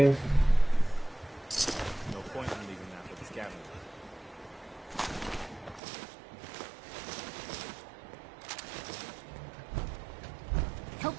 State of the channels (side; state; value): left; drops out; at 5.8 s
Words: No point in leaving that for the scavenger.